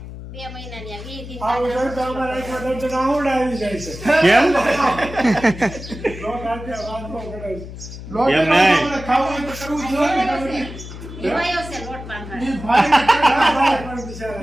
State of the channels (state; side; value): noise; left; hum, 12 dB below the sound